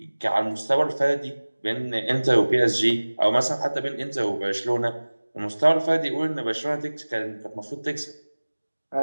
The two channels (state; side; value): inverted; both; correlation -1.00